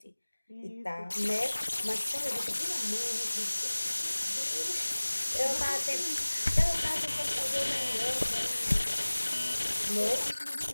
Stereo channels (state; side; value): inverted; both; correlation -1.00